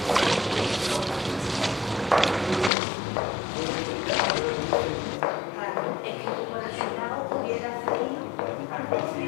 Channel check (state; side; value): drops out; right; at 2.7 s